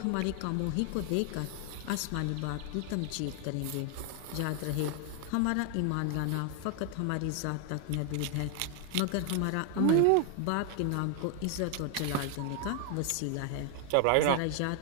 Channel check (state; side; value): different; both; correlation 0.00